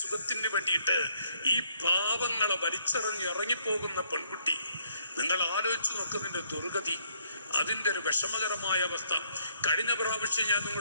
സുഖത്തിന് വേണ്ടിയിട്ട് ഈ പാവങ്ങളെ ഇറങ്ങിപ്പോകുന്ന പെൺകുട്ടി. നിങ്ങൾ ആലോചിച്ച് നോക്കുന്നതിന്റെ ദുർഗതി, അതിൻ്റെ ഒരു വിഷമകരമായ അവസ്ഥ. കഴിഞ്ഞ പ്രാവശ്യം ഞാൻ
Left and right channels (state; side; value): inverted; both; correlation -0.69